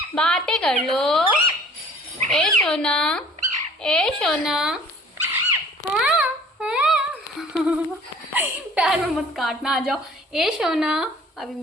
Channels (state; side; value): normal; both; correlation 0.51